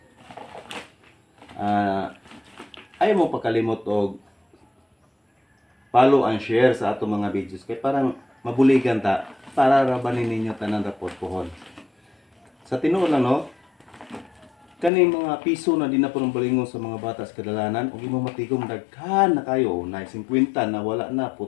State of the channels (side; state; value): right; drops out; at 14.9 s